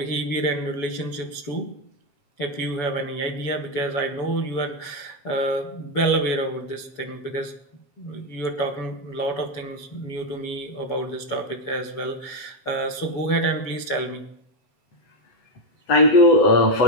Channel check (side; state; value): right; late; 7.0 ms